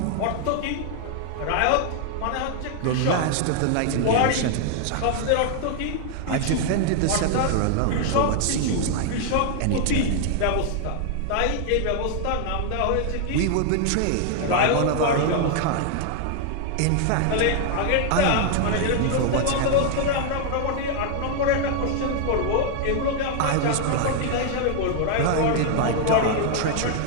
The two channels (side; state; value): both; different; correlation 0.00